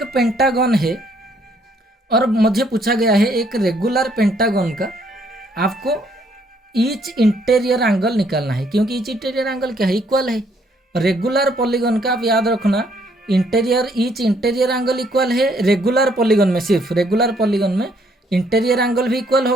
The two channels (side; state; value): both; normal; correlation 0.67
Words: पेंटागन है और मुझे पूछा गया है एक रेगुलर पेंटागन का आपको ईच इंटीरियर एंगल निकालना है, क्योंकि ईच इंटीरियर एंगल क्या है, इक्वल है। रेगुलर पॉलीगन का आप याद रखना, ईच इंटीरियर एंगल इक्वल है। रेगुलर पॉलीगन में, सिर्फ रेगुलर पॉलीगन में इंटीरियर एंगल भी इक्वल